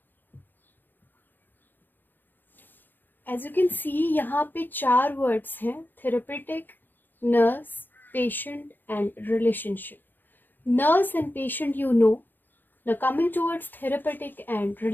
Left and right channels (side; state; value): right; late; 0.092 ms